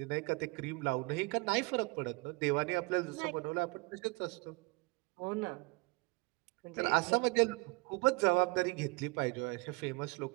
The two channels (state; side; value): quieter; left; 27.1 dB